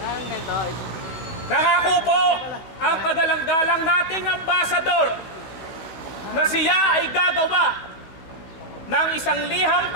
Nangako po ang kagalang-galang nating ambasador na siya ay gagawa ng isang liham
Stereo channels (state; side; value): late; right; 16 ms